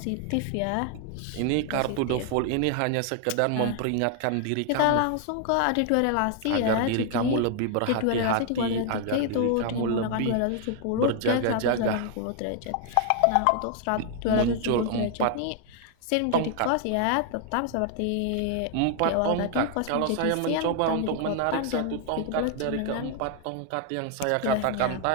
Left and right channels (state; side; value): different; both; correlation 0.00